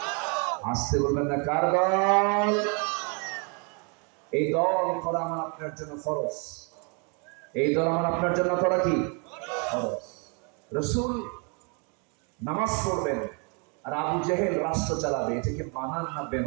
আসতে বলবেন না, কার দল? এই দল করা আমার আপনার জন্য ফরজ। এই দল আমার আপনার জন্য করা কি ফরজ? রাসূল নামাজ পড়বেন আর আবু জেহেল রাষ্ট্র চালাবে, এটাকে মানান না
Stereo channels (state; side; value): quieter; left; 35.4 dB